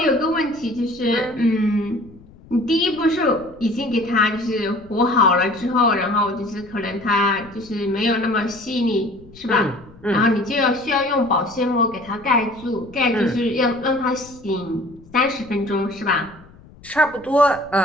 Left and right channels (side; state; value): left; noise; rumble, 23 dB below the sound